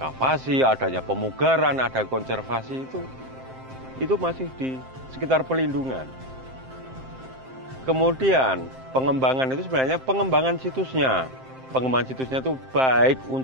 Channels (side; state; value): left; late; 7.6 ms